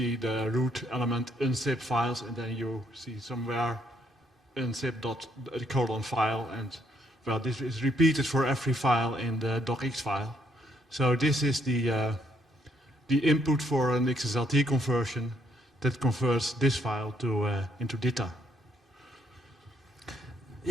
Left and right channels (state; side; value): normal; both; correlation 0.71